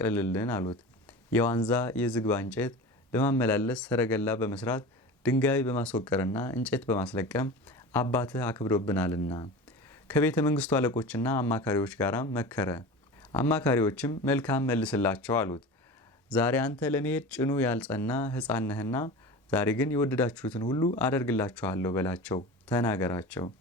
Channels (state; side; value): normal; both; correlation 0.32